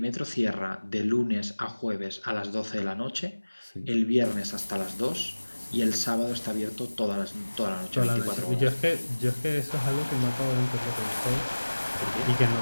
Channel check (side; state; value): both; inverted; correlation -1.00